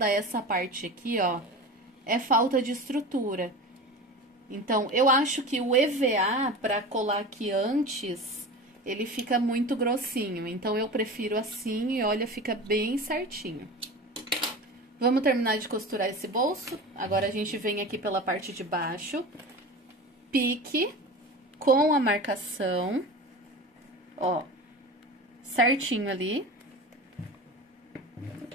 essa parte aqui, ó? É falta de estrutura. Então, eu acho que o EVA, para colar aqui antes, ele fica muito grossinho. Então, eu prefiro assim e olha, fica bem certinho. Vamos terminar de costurar esse bolso. Agora, a gente vem aqui pela parte de baixo. Pique com a marcação. Ó, certinho ali.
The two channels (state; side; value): normal; both; correlation 0.31